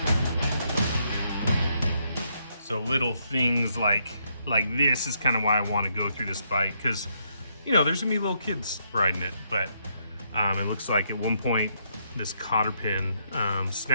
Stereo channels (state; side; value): inverted; both; correlation -0.75